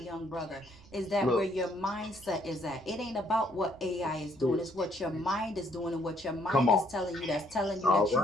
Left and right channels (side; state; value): right; noise; rumble, 24 dB below the sound